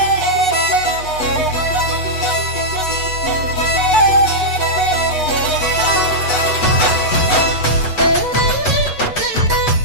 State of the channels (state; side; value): late; right; 8.1 ms